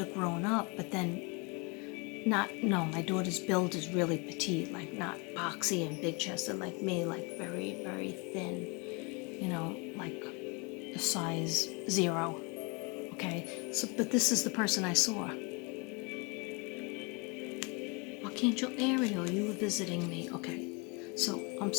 grown up, but then my daughter's build is really petite, like not boxy and big chested like me, like very, very thin, like a size 0. Okay, so, but this is the person I saw. Archangel Ariel, you were visiting me. Okay, so I'm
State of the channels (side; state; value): right; quieter; 30.7 dB